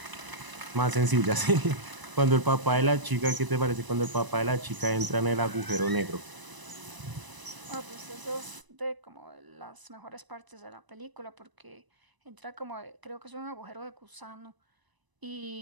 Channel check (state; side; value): late; left; 1.0 ms